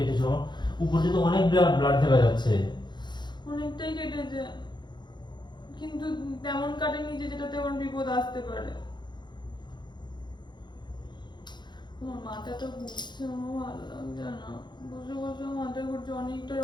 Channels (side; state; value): right; late; 0.21 ms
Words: আমার উপর থেকে অনেক ব্লাড দেখা যাচ্ছে। অনেকটাই কেটেছে, কিন্তু তেমন কাটেনি যে যেটাতে আমার বিপদ আসতে পারে। আমার মাথাটা ঘুরছে, আমার ভালো লাগছে না। বসে বসে মাথা ঘুরছে, অনেকটা